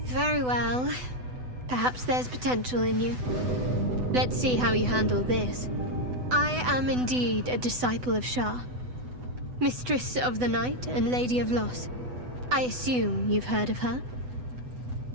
Very well. Perhaps there's potential in you. Let's see how you handle this. I am indeed a disciple of Shah, Mistress of the Night and Lady of Loss. I assume you've heard of her?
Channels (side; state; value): left; late; 8.0 ms